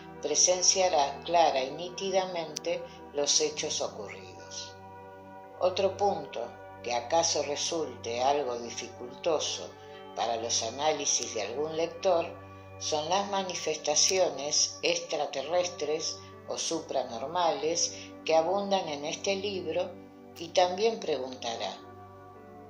presenciará clara y nítidamente los hechos ocurridos. Otro punto, que acaso resulte algo dificultoso para los análisis de algún lector, son las manifestaciones extraterrestres o supranormales que abundan en este libro, y también preguntará,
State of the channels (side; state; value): both; identical; correlation 1.00